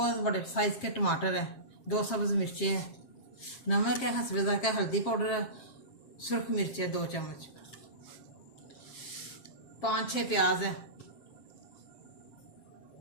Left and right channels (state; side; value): late; right; 7.5 ms